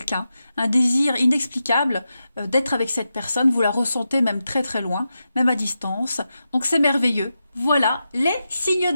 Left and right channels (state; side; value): inverted; both; correlation -0.89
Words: un désir inexplicable d'être avec cette personne, vous la ressentez même très loin, même à distance, donc c'est merveilleux. Voilà, les signes